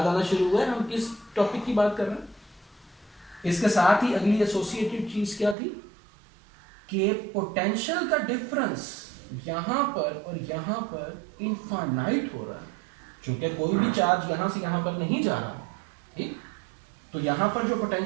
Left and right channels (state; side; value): drops out; left; at 5.6 s